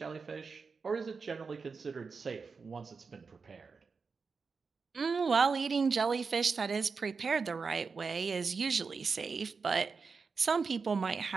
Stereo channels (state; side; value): quieter; left; 4.9 dB